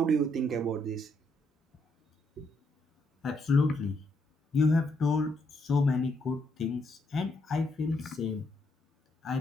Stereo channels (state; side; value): normal; both; correlation 0.76